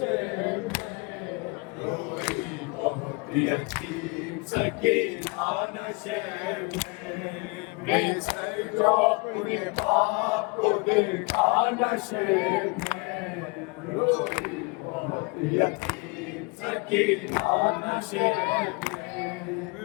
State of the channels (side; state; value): right; quieter; 28.5 dB